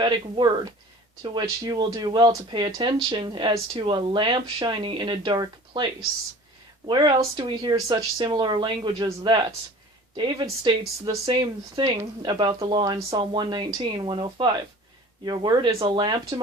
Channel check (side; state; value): both; normal; correlation 0.44